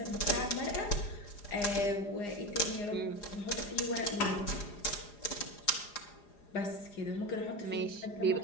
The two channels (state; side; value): late; right; 4.9 ms